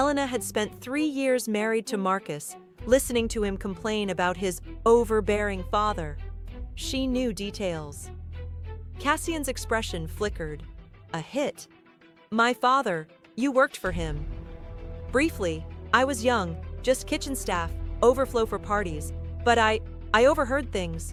had spent 3 years married to Marcus, listening to him complain about his overbearing father. She knew details." Cassian's expression flickered. "A hit? My father, you worked for him." "Briefly. I was young, just kitchen staff, overflow for parties. But I overheard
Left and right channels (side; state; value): both; identical; correlation 1.00